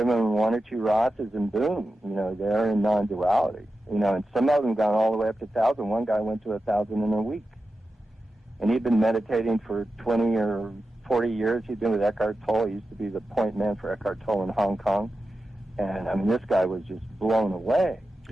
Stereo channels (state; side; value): normal; both; correlation 0.92